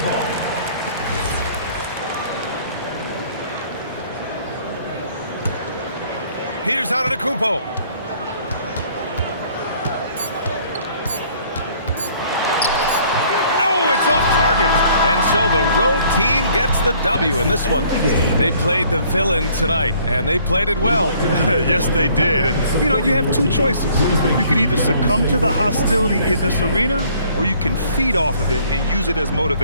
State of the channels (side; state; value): both; inverted; correlation -0.59